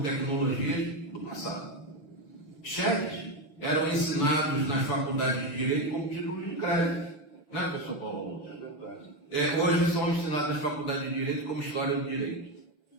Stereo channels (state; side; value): late; right; 6.9 ms